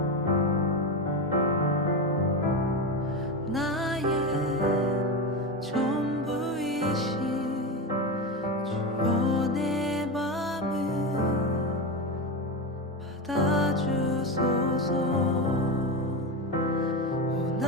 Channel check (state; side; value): normal; both; correlation 0.17